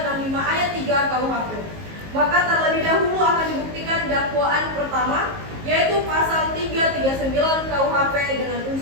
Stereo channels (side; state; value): left; late; 19 ms